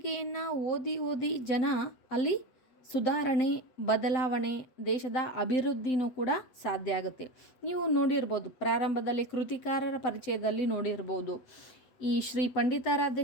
ಓದಿ ಜನ ಅಲ್ಲಿ ಸುಧಾರಣೆ, ಬದಲಾವಣೆ, ದೇಶದ ಅಭಿವೃದ್ಧಿನೂ ಕೂಡ ಸಾಧ್ಯ ಆಗುತ್ತೆ. ನೀವು ನೋಡಿರ್ಬೋದು, ಪ್ರಾರಂಭದಲ್ಲಿ ಕೃತಿಕಾರರ ಪರಿಚಯದಲ್ಲಿ ನೋಡಿರ್ಬೋದು, ಈ ಶ್ರೀ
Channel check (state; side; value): late; right; 8.1 ms